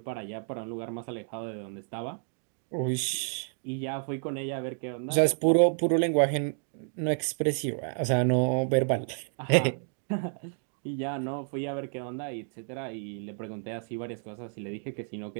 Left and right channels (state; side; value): silent; left; 57 dB below the other